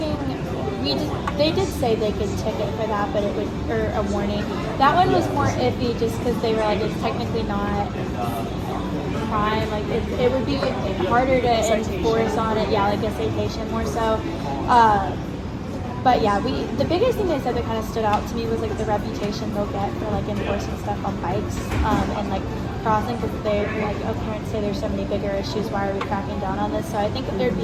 they did say they could ticket for that, but it would, or a warning. That one was more iffy just because they were like, it's technically not crime, like it would be harder to enforce on it, yeah, like a citation more so. But yeah, the biggest thing they said that kind of stood out to me was like the reputation they'll get for like enforcing stuff on bikes and like crossing, because they're like, oh, parents say there's so many bigger issues, why are we cracking down on this? So I think that there'd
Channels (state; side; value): identical; both; correlation 1.00